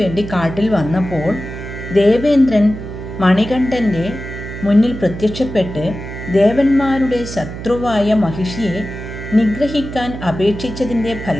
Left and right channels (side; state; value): right; noise; hum, 9 dB below the sound